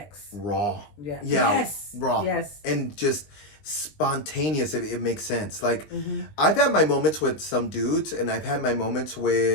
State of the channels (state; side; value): late; right; 20 ms